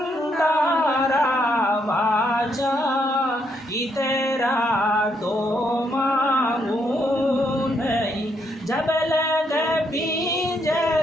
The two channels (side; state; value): both; normal; correlation 0.75